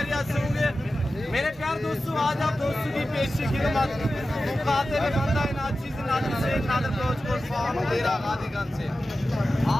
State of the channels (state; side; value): normal; both; correlation 0.94